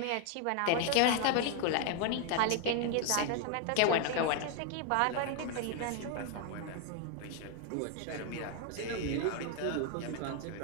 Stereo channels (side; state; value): both; different; correlation 0.01